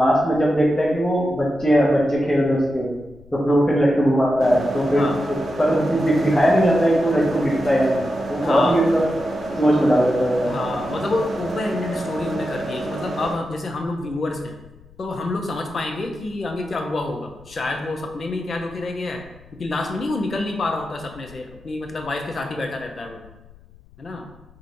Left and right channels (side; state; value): left; noise; rumble, 24 dB below the sound